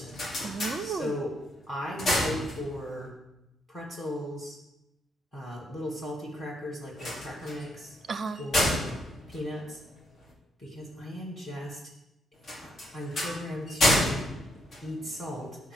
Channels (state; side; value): normal; both; correlation 0.76